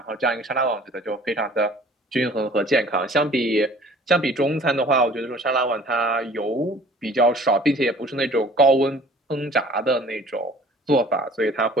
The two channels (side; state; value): both; normal; correlation 0.50